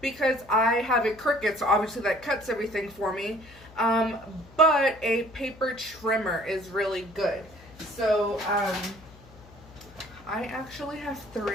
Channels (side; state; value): left; noise; hum, 22 dB below the sound